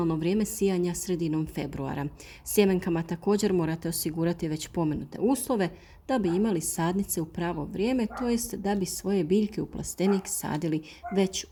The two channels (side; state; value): both; identical; correlation 1.00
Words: vrijeme sijanja sredinom februara. Sjemenkama također morate osigurati već pomenute uslove da bi imali sadnice u pravo vrijeme, to jest da bi svoje biljke u plastenik sadili već